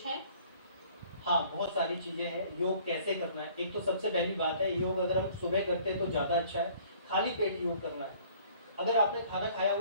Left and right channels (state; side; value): inverted; both; correlation -0.55